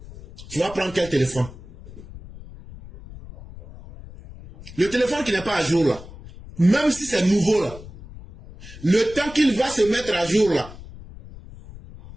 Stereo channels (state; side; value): noise; left; rumble, 16 dB below the sound